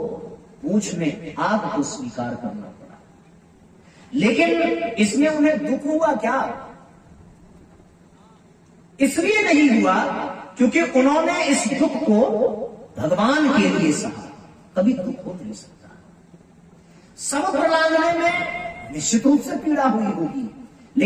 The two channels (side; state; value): both; identical; correlation 1.00